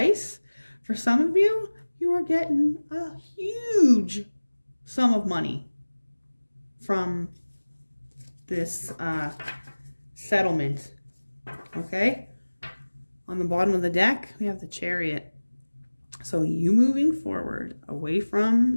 for some of you, you are getting a huge sum of money from this settlement. Okay? On the bottom of the deck, we have the Chariot. So you moving forward, away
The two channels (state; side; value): inverted; both; correlation -1.00